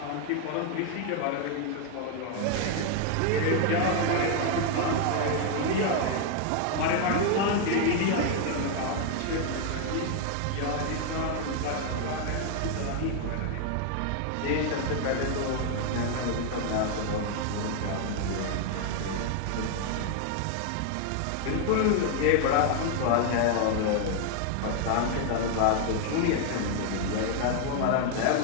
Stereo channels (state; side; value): different; both; correlation 0.00